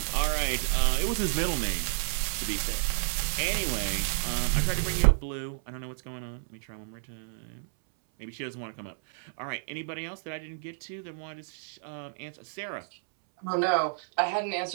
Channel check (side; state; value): left; silent; 58 dB below the other